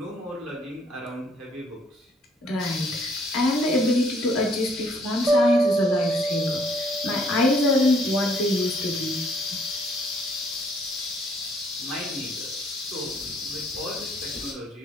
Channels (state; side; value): normal; both; correlation 0.64